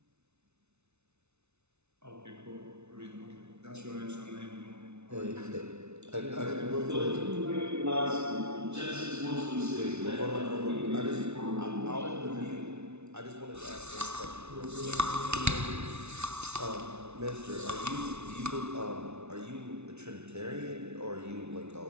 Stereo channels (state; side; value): late; left; 0.81 ms